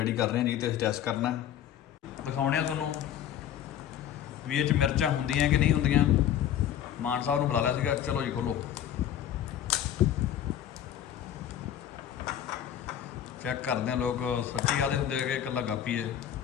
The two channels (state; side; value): quieter; right; 10.4 dB